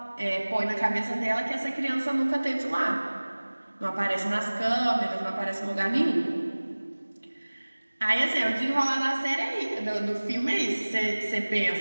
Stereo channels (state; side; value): inverted; both; correlation -1.00